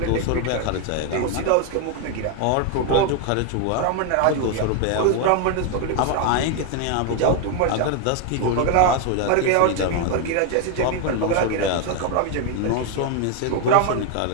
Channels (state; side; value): different; both; correlation 0.01